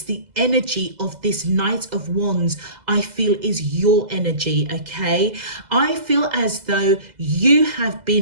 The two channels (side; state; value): left; late; 2.0 ms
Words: the energy of this Knight of Wands I feel is your energy, okay? I feel as though you have